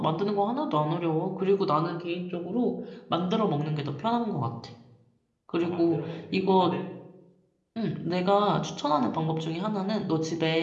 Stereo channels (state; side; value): identical; both; correlation 1.00